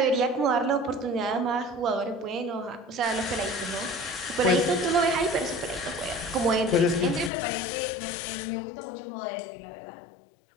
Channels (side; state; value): right; drops out; at 7.3 s